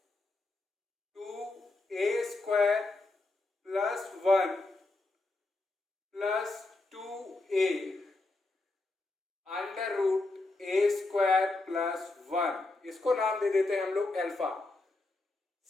2a² plus 1 plus 2a √a² plus 1, इसको नाम दे देते हैं हम लोग अल्फा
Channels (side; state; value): right; quieter; 3.2 dB